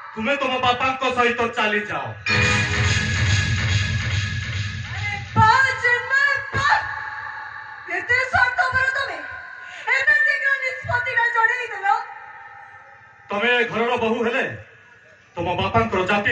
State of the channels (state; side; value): identical; both; correlation 1.00